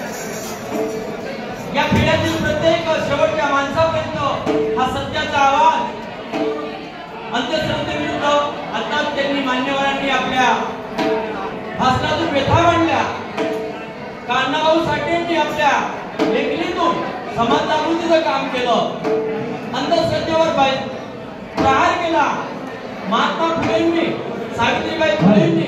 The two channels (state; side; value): identical; both; correlation 1.00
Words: या पिढ्यातील प्रत्येक शेवटच्या माणसापर्यंत हा सत्याचा आवाज अंधश्रद्धेविरुद्ध आता त्यांनी मान्यवरांनी आपल्या भाषणातून व्यथा मांडल्या. अण्णाभाऊ साठेंनी आपल्या लेखणीतून समाज जागृतीचं काम केलं. अंधश्रद्धेवर प्रहार केला. महात्मा फुलेंनी सावित्रीबाई